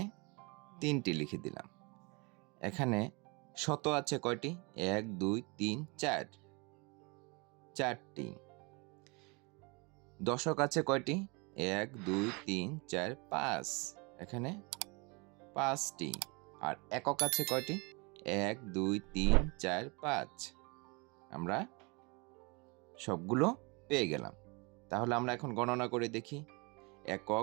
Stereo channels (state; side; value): quieter; left; 29.2 dB